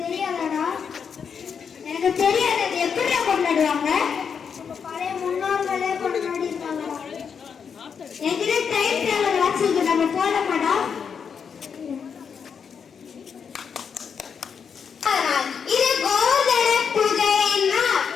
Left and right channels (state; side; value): quieter; right; 6.7 dB